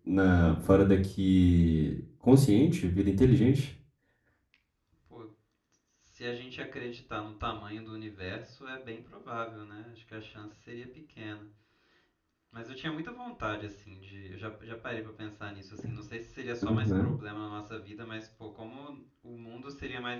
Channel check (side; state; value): both; identical; correlation 1.00